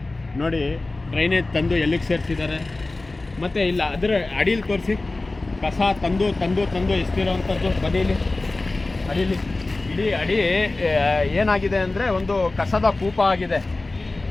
ನೋಡಿ ಡ್ರೈನೇಜ್ ತಂದು ಎಲ್ಲಿಗೆ ಸೇರಿಸಿದ್ದಾರೆ, ಮತ್ತು ಇಲ್ಲ ಅದರ ಅಡಿಯಲ್ಲಿ ತೋರಿಸಿ ಕಸ ತಂದು ತಂದು ತಂದು ಎಸ್ತಿರೋವಂಥದ್ದು. ಬದೀಲಿ ಅಡಿಲಿ ಇಡೀ ಅಡಿ ಏನಾಗಿದೆ ಅಂದರೆ ಒಂದು ಕಸದ ಕೂಪ ಆಗಿದೆ.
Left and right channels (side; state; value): right; quieter; 3.1 dB